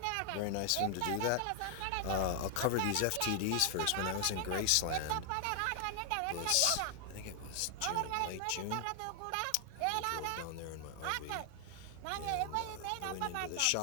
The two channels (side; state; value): both; different; correlation 0.00